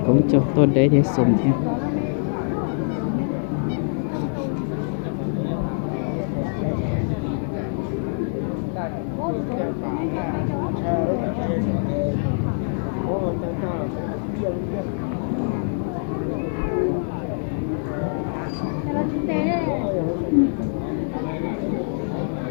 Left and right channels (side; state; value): right; silent; 62 dB below the other